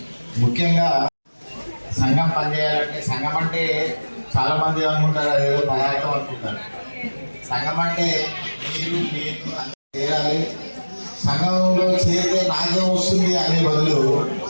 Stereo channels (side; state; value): both; inverted; correlation -1.00